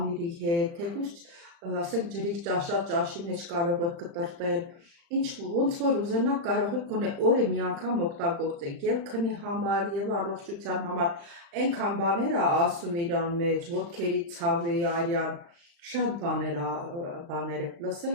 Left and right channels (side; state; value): left; late; 35 ms